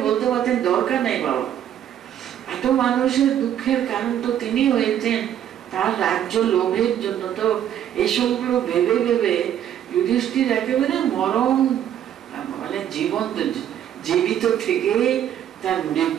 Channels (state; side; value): quieter; left; 10.4 dB